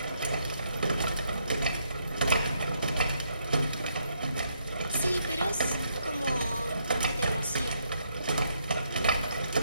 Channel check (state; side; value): inverted; both; correlation -0.75